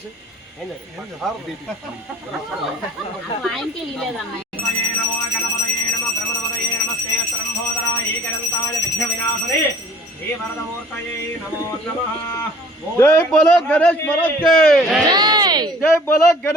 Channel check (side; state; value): both; normal; correlation 0.50